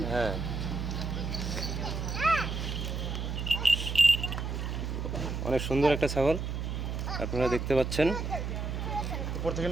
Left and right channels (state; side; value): noise; right; hum, 3 dB below the sound